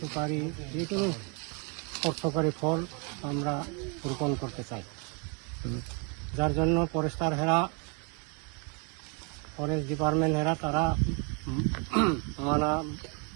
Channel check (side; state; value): left; quieter; 33.7 dB